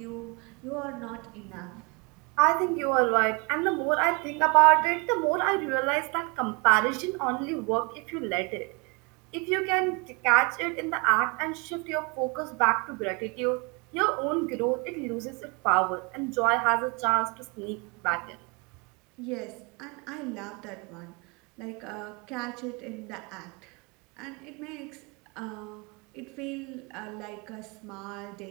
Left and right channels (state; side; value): quieter; left; 30.1 dB